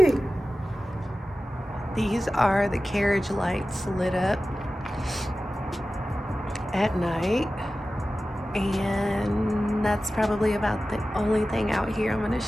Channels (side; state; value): both; normal; correlation 0.95